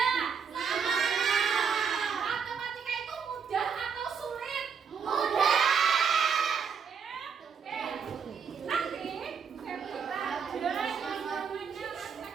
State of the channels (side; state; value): left; quieter; 6.4 dB